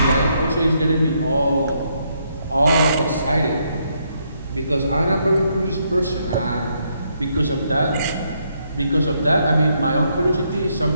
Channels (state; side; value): inverted; both; correlation -0.75